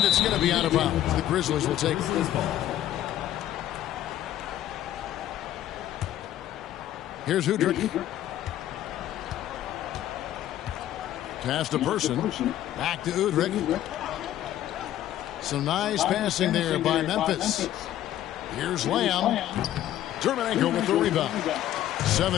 it's going to be out of bounds. The Grizzlies will take it. Here's Udrih. Pass to Person. Back to Udrih. Some nice passing there by Memphis. Here's Lamb. Dermonenko with the rebound.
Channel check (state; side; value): quieter; right; 12.7 dB